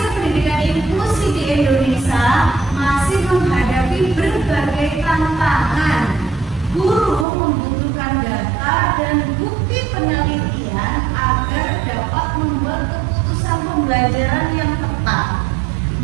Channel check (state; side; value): drops out; left; at 7.2 s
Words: pendidikan inklusi di Indonesia masih menghadapi berbagai tantangan. Guru membutuhkan data dan bukti penelitian agar dapat membuat keputusan pembelajaran yang tepat.